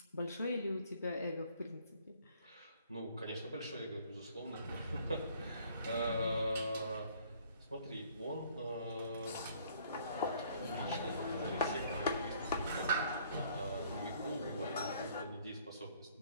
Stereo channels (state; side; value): inverted; both; correlation -0.61